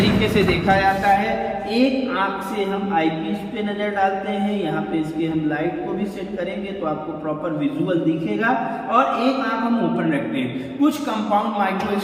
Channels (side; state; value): both; identical; correlation 1.00